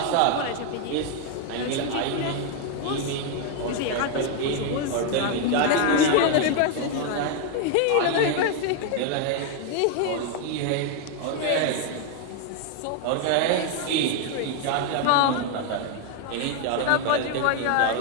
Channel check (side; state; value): both; different; correlation 0.01